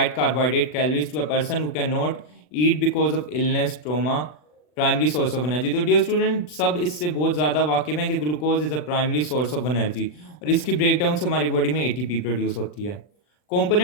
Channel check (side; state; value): right; late; 40 ms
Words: carbohydrate calories to a person who cannot eat because of illness, trauma, primary source of energy. तो डियर स्टूडेंट, सब इससे बहुत ज़्यादा वाकिफ़ हैं कि glucose is a primary source of energy, और इसकी breakdown से हमारी बॉडी में एटीपी प्रोड्यूस होती है।